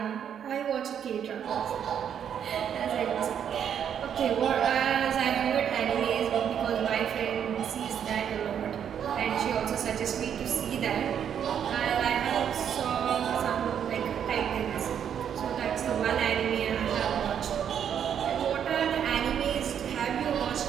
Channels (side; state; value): left; quieter; 8.7 dB